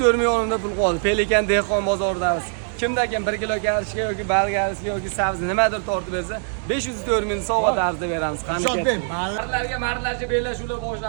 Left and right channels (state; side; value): silent; left; digital silence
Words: millionda pul qoldi. Pelikan dehqon bozoridamiz. Kimdakin 1 kilo karishga yoki balgarishga yoki sabzi nimadir tortib bersa, 504 ming sovg'a tarzida beramiz. Qani ket. Mardlarga bellashuvlar